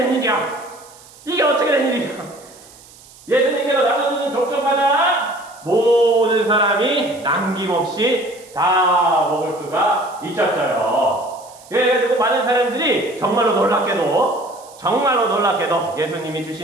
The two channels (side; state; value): right; noise; hiss, 23 dB below the sound